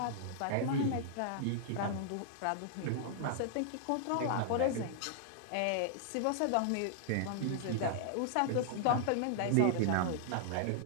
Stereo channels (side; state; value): both; different; correlation -0.01